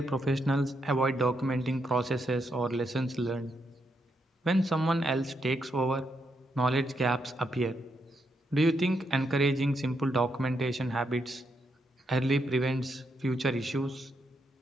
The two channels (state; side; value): normal; both; correlation 0.80